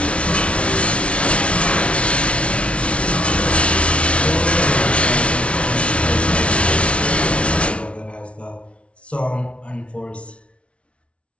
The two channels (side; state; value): right; late; 0.061 ms